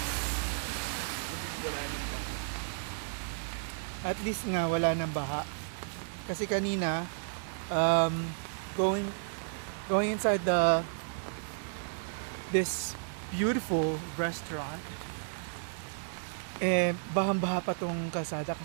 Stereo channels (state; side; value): silent; left; digital silence